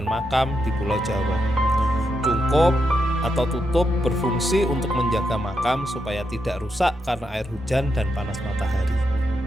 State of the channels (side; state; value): both; normal; correlation 0.83